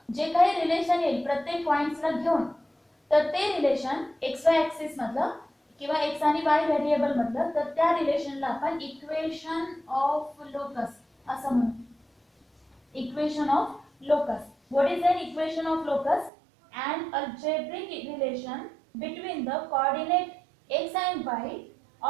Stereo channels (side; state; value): left; drops out; at 16.3 s